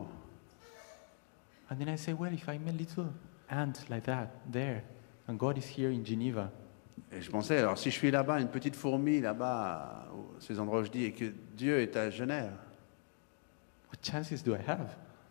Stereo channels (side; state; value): right; silent; 51 dB below the other